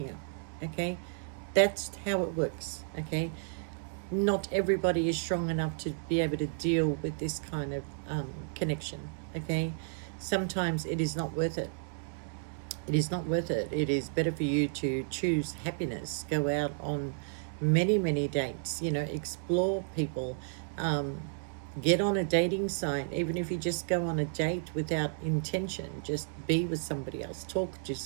okay? That's how it works, okay? Not everybody is strong enough to be able to deal with this kind of connection, okay? Sometimes it is not worth it. It is not worth it. It is better for you to choose happiness, go out on many, many dates, you know, explore people, Get on a dating site, even if you just go on a date without intention, just be with somebody else, talk to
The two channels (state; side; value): silent; left; digital silence